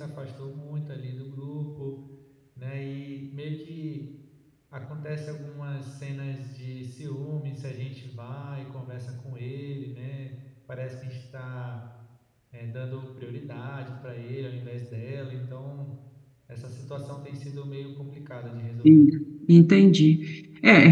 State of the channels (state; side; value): identical; both; correlation 1.00